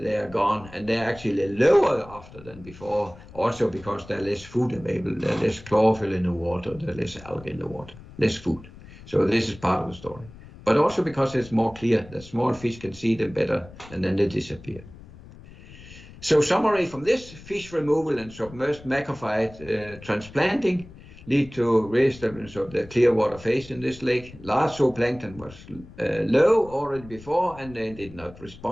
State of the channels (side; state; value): left; noise; rumble, 19 dB below the sound